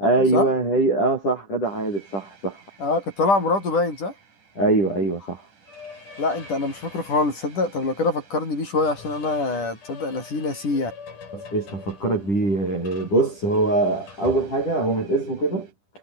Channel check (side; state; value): right; late; 10 ms